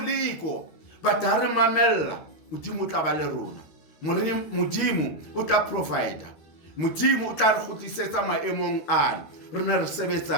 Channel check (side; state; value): right; late; 13 ms